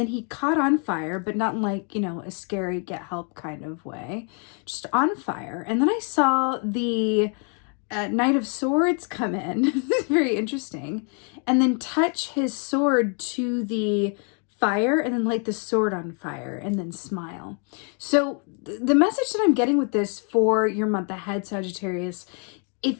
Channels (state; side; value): quieter; right; 39.7 dB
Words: he caught on fire, but not in like, a scary get help kind of way, just on fire. And then I saw the Knight of Swords come in. This is very interesting. And then touch his sword to the fire and then light the sword on fire and then smile. So the message that I'm getting with this for your month ahead, Sagittarius,